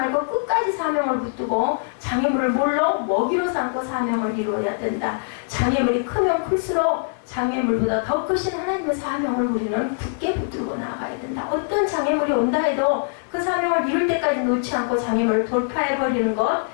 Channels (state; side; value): silent; right; 64 dB below the other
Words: 끝까지 사명을 붙들고 장애물을 뭘로? 먹이로 삼고 사명을 이루어야 된다. 장애물이 크면 클수록 장애물보다 더 크신 하나님의 사명을 우리는 굳게 붙들고 나가야 된다. 어떤 장애물이 온다 해도 그 사명을 이룰 때까지 놓지 않고 장애물을 돌파해버리는 것,